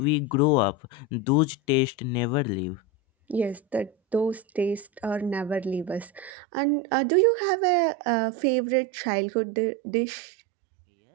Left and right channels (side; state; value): left; drops out; at 6.3 s